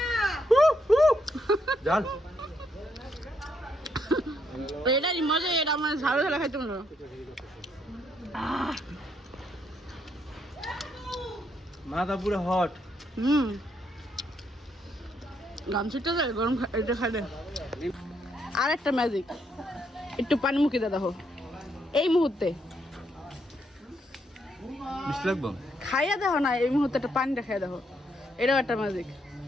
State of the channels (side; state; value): both; normal; correlation 0.75